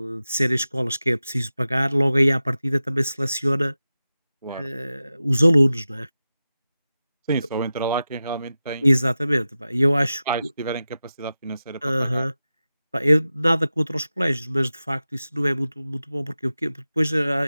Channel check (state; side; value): inverted; both; correlation -0.93